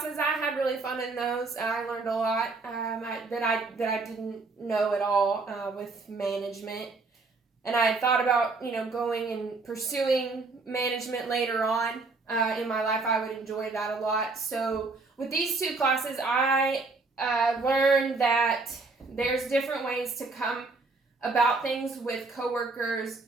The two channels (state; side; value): quieter; left; 3.8 dB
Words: I had really fun in those. I learned a lot that I didn't know at all with management. And I thought about, going and pursuing management later on in my life. I would enjoy that a lot. So with these two classes, I learned that there's different ways to come about things with coworkers,